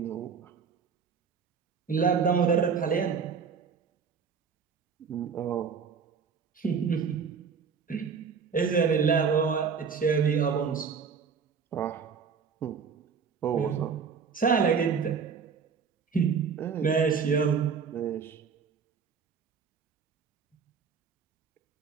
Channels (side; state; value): left; quieter; 6.1 dB